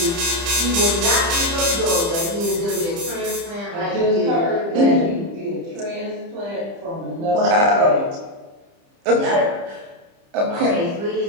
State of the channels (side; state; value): left; late; 30 ms